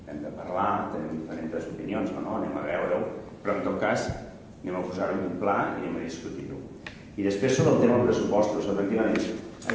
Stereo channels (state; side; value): identical; both; correlation 1.00